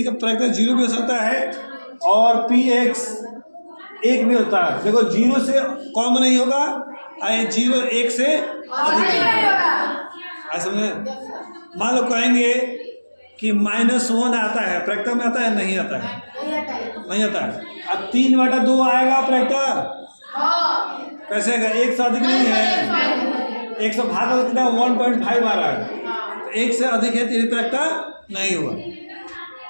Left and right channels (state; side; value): inverted; both; correlation -1.00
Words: का प्रायिकता 0 भी हो सकता है और px 1 भी होता है। देखो 0 से कम नहीं होगा, 0 1 से अधिक नहीं होगा। समझे? मान लो कहेंगे कि -1 आता है, प्रायिकता में आता है? नहीं आता है, नहीं आता है। अब 3/2 आएगा प्रायिकता, कैसे आएगा? 1 से अधिक नहीं है, 1 से भाग कितना 1.5 आ रहा है, तो 1 से अधिक है तो ये प्रायिकता नहीं हुआ,